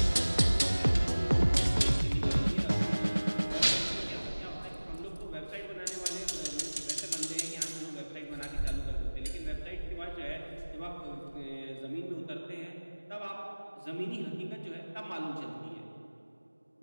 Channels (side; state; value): both; inverted; correlation -1.00